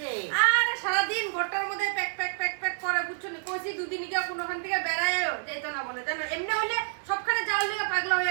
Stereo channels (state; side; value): silent; left; digital silence